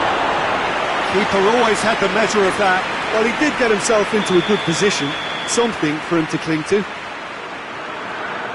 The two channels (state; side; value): identical; both; correlation 1.00